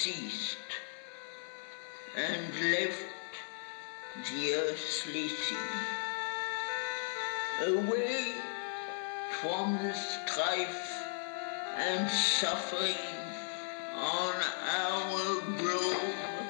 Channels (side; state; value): right; silent; digital silence